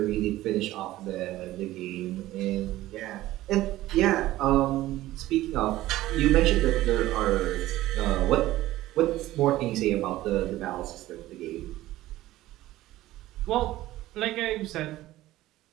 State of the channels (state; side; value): quieter; left; 15.9 dB